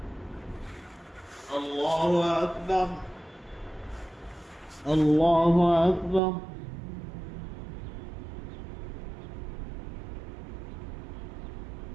الله أكبر. الله أكبر.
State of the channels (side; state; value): left; drops out; at 6.2 s